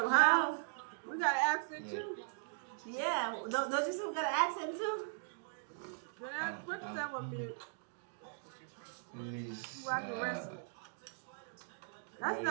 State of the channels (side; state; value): left; silent; digital silence